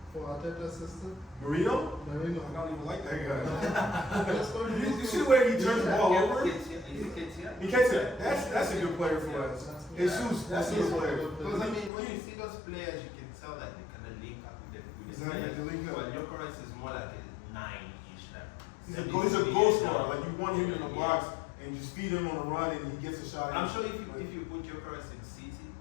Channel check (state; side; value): drops out; right; at 11.9 s